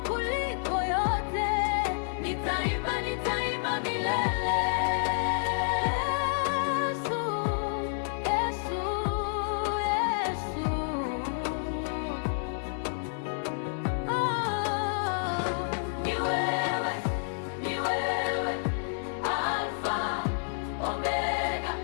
kuliko yote. Nitaimba, nitaimba milele.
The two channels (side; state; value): right; silent; 58 dB below the other